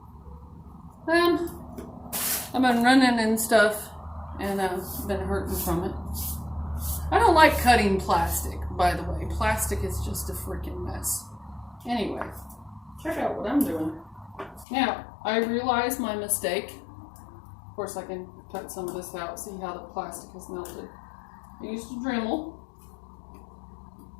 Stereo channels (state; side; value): drops out; right; at 14.7 s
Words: I've been running and stuff, and I've been hurting from it. I don't like cutting plastic, by the way. Plastic is just a freaking mess. Anyway, check out what I'm doing. Now, I realized my mistake. Of course, I can cut some of this out, see how the plastic has melted. I used a Dremel